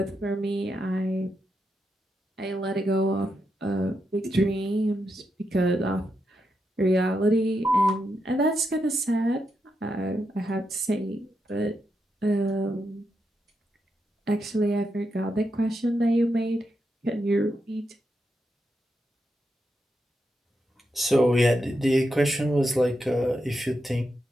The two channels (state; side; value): normal; both; correlation 0.84